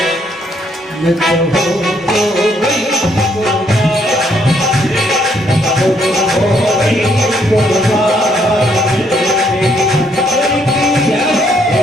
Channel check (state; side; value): normal; both; correlation 0.70